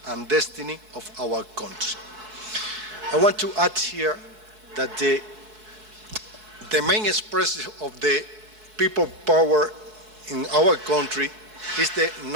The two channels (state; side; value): late; left; 4.6 ms